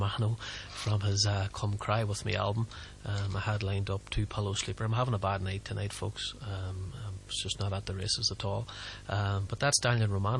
from his Come Cry With Me album. I had lined up two Pillow Sleeper. I'm having a bad night tonight, folks. It's just not at the races at all. But that's Daniel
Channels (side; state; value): both; identical; correlation 1.00